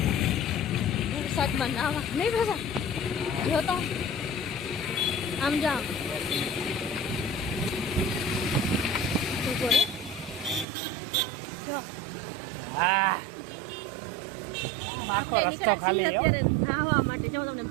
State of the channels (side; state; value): left; drops out; at 10.7 s